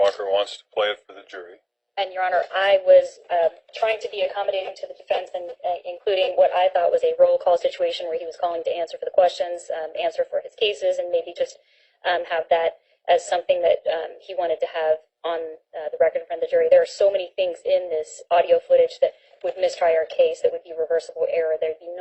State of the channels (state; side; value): identical; both; correlation 1.00